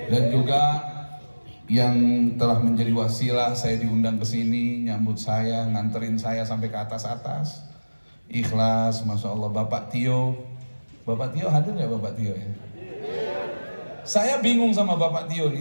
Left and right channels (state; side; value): inverted; both; correlation -1.00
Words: Dan juga yang telah menjadi wasilah saya diundang ke sini, nyambut saya, nganterin saya sampai ke atas-atas, ikhlas, masya Allah. Bapak Tio hadir ya Bapak Tio ya? Saya bingung sama Bapak Tio